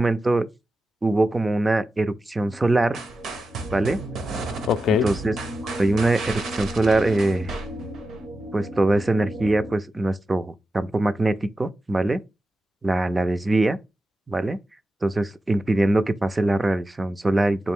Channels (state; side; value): normal; both; correlation 0.92